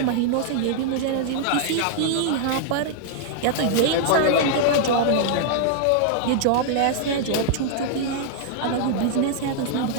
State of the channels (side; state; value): both; different; correlation -0.01